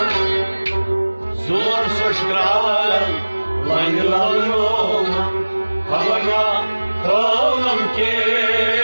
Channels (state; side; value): inverted; both; correlation -1.00